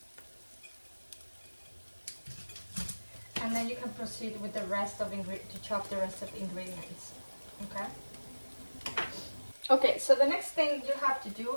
And then you can proceed with the rest of to chop the rest of the ingredients. Okay. Okay, so the next thing you have to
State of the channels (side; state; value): both; inverted; correlation -1.00